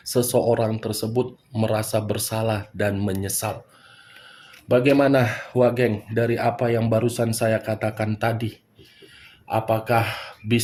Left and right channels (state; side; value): identical; both; correlation 1.00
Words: seseorang tersebut merasa bersalah dan menyesal. Bagaimana Wageng dari apa yang barusan saya katakan tadi? Apakah